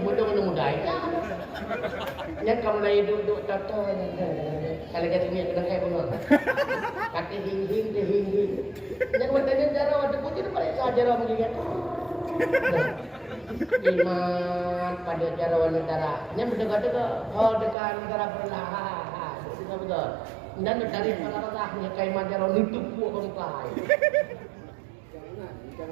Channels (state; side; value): drops out; left; at 17.8 s